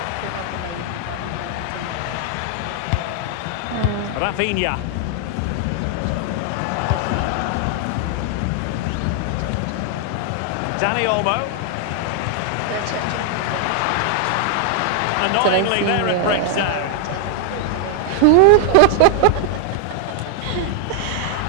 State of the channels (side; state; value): both; different; correlation 0.00